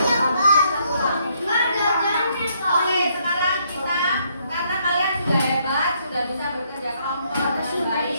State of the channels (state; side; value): inverted; both; correlation -0.71